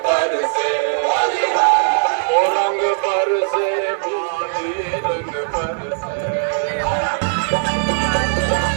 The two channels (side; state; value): left; silent; digital silence